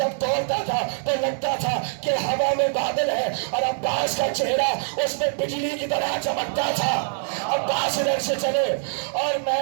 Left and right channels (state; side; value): silent; left; digital silence